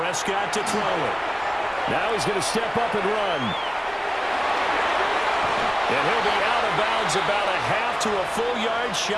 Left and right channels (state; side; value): identical; both; correlation 1.00